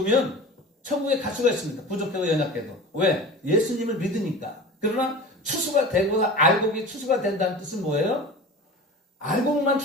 천국에 갈 수가 있습니다. 부족하고 연약해도. 왜? 예수님을 믿으니까. 그러나 추수가 되고 알곡이 추수가 된다는 뜻은 뭐예요? 알곡만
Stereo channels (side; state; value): both; normal; correlation 0.35